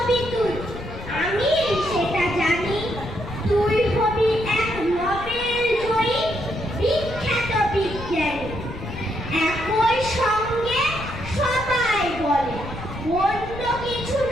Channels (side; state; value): left; noise; rumble, 11 dB below the sound